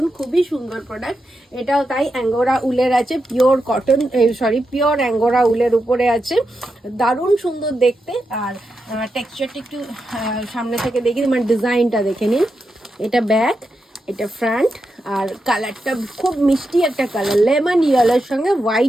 খুবই সুন্দর প্রোডাক্ট। এটাও তাই অ্যাঙ্গোরা উলের আছে, পিওর কটন পিওর অ্যাঙ্গোরা উলের উপরে আছে, দারুণ সুন্দর দেখতে। আর টেক্সচারটা একটু সামনে থেকে দেখি, মানে ডিজাইনটা দেখে নিন। এটা ব্যাক, এটা ফ্রন্ট। আর কালারটা খুব মিষ্টি একটা কালার, লেমন ইয়েলোর সঙ্গে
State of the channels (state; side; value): normal; both; correlation 0.87